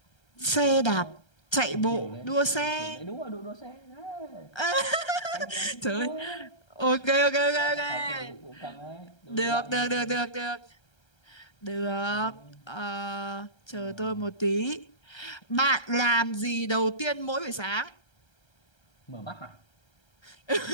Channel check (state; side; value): late; right; 1.3 ms